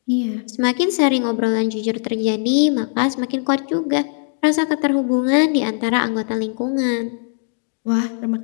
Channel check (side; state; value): right; silent; digital silence